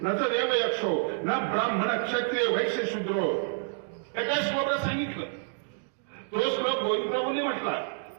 न तर देव यक्षो न ब्राह्मण क्षत्रिय वैश्य शूद्रो. एका श्लोकात सांगितलं. तो श्लोक गोविंद प्रभूंनी म्हटला,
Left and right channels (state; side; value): silent; left; digital silence